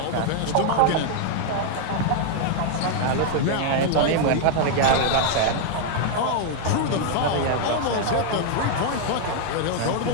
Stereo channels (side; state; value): both; different; correlation 0.00